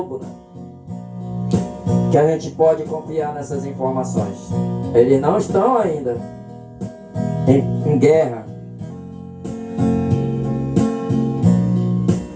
né? Que a gente pode confiar nessas informações. Eles não estão ainda em guerra.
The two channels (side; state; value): both; identical; correlation 1.00